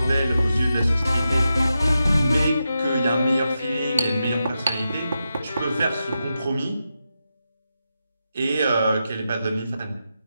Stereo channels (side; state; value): both; inverted; correlation -0.89